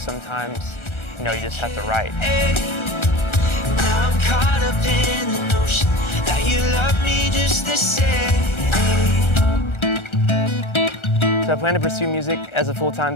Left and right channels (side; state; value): right; late; 1.3 ms